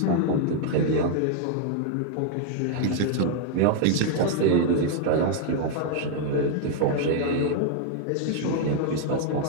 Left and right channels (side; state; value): both; different; correlation 0.00